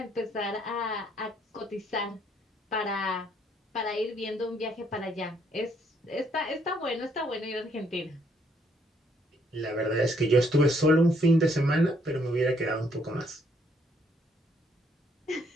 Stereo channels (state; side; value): normal; both; correlation 0.69